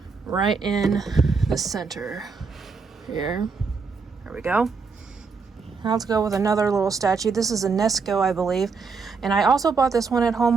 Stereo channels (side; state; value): left; quieter; 4.9 dB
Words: right in the center here. There we go. Now let's go with another little statue. This is a Nesco, I believe. And I also bought this one at